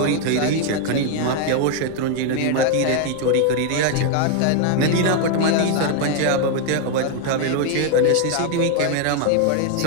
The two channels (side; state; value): both; different; correlation 0.00